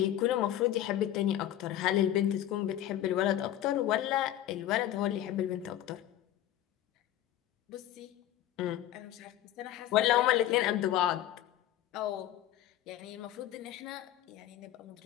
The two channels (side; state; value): right; quieter; 12.6 dB